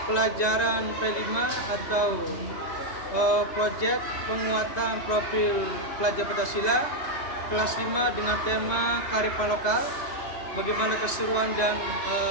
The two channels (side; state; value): right; late; 3.1 ms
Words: pelajaran P5 atau proyek penguatan profil pelajar Pancasila kelas 5 dengan tema kearifan lokal. Bagaimana keseruan dan